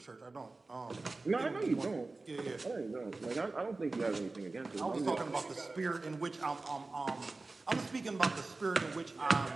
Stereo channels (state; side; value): quieter; left; 3.4 dB